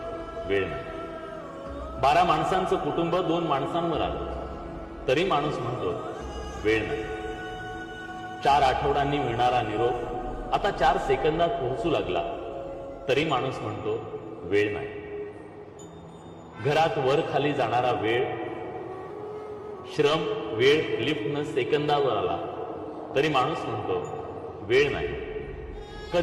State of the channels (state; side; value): identical; both; correlation 1.00